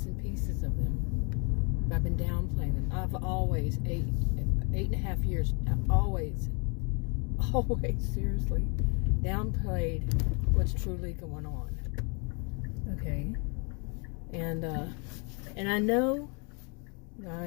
and pieces of them, but I've been downplaying them. I've always, 8.5 years, I've always, seriously, downplayed what's truly going on. Okay? And I know I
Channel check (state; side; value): quieter; right; 34.6 dB